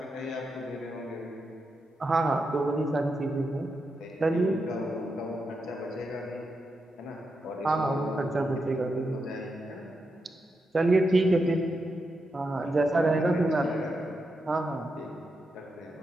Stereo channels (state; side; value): normal; both; correlation 0.85